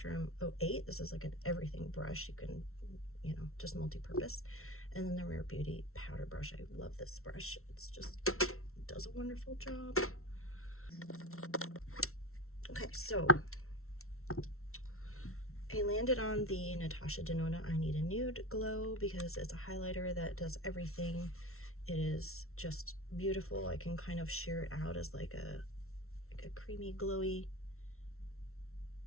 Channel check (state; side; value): late; right; 0.62 ms